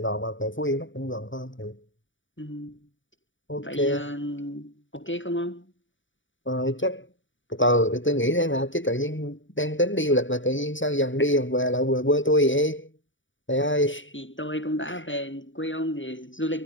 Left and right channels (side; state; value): right; late; 0.56 ms